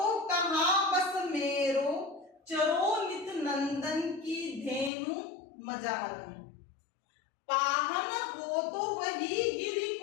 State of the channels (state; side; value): drops out; right; at 4.9 s